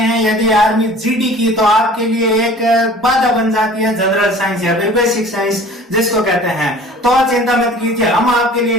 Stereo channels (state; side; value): normal; both; correlation 0.46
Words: यदि आर्मी जीडी की, तो आपके लिए एक बाधा बन जाती है जनरल साइंस या फिर बेसिक साइंस जिसको कहते हैं। तो चिंता मत कीजिए, हम आपके लिए